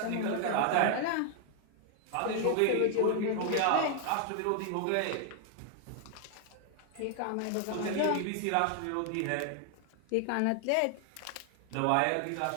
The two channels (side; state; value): both; different; correlation 0.00